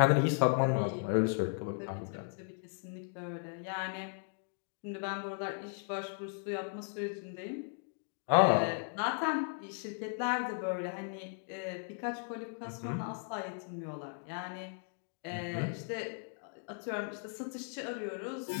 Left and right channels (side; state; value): right; silent; 54 dB below the other